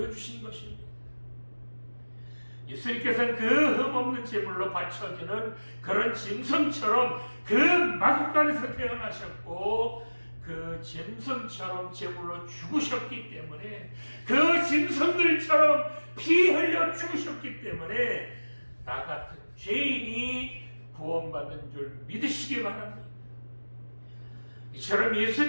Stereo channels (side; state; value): both; inverted; correlation -1.00